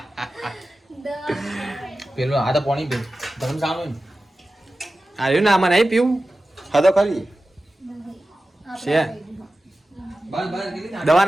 દવા પેલું આ તો પાણી પી ધરમ સાનું આવ્યું ને આમાં નહીં પીવું હા તો ખરી છે બસ બસ કીધી દવા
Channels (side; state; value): both; normal; correlation 0.95